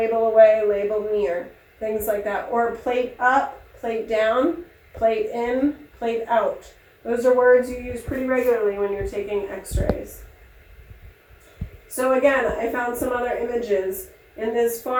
away, label near, things like that. Or plate up, plate down, plate in, plate out. Those are words you use pretty regularly when you're taking x-rays. So again, I found some other images. In this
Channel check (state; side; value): identical; both; correlation 1.00